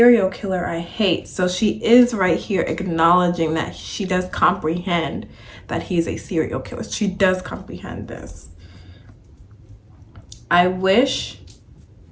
killer I hate. So she is right here acknowledging that she does comprehend that he's a serial killer. She does comprehend this. I wish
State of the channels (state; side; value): identical; both; correlation 1.00